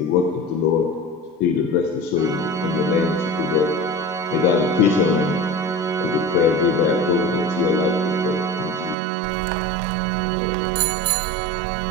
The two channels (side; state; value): left; drops out; at 9.0 s